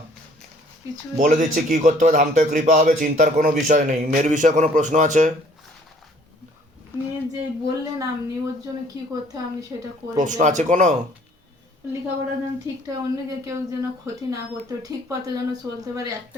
কিছু বলে দিচ্ছি কি করতে হবে, ধামতে কৃপা হবে, চিন্তার কোনো বিষয় নেই। মেয়ের বিষয়ে কোনো প্রশ্ন আছে? নিয়ে যে বললেন আপনি, ওর জন্য কি করতে হয় আমি সেটা করে প্রশ্ন দেব। আছে কোনো? লেখাপড়া যেন ঠিকঠাক, অন্যকে কেউ যেন ক্ষতি না করতে, ঠিক পথে যেন চলতে পারে। একটা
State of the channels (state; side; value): normal; both; correlation 0.58